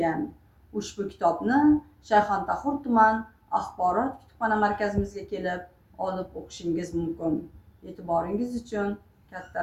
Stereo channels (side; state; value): both; identical; correlation 1.00